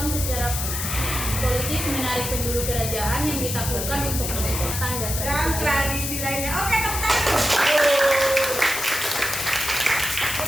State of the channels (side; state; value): left; noise; hiss, 3 dB below the sound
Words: secara politis menarik penduduk kerajaan yang ditakutkan